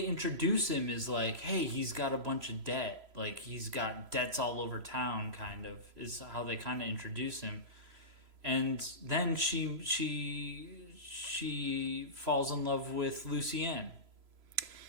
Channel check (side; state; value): left; late; 3.0 ms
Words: introduce him is like, hey, he's got a bunch of debt. Like, he's got debts all over town, kind of, is how they kind of introduce him. And then she falls in love with Lucienne.